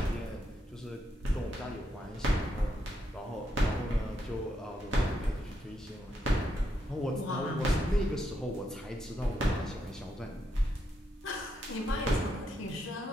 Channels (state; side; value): normal; both; correlation 0.80